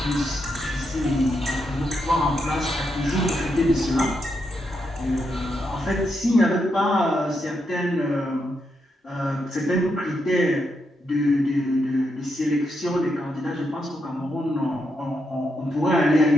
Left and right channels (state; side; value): normal; both; correlation 0.82